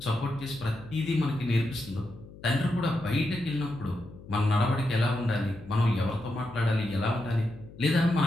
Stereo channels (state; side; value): noise; left; hum, 18 dB below the sound